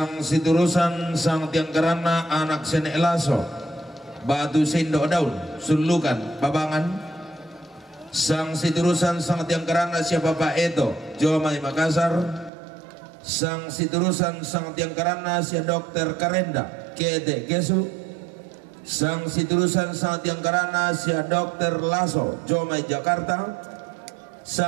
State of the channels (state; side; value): drops out; left; at 12.5 s